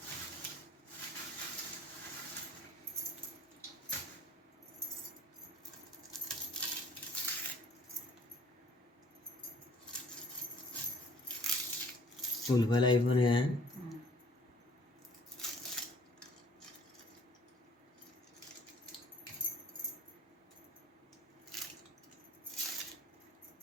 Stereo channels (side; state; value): both; normal; correlation 0.54